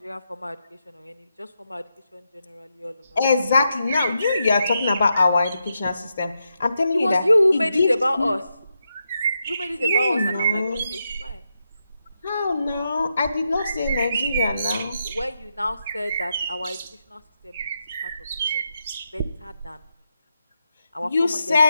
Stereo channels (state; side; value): inverted; both; correlation -0.85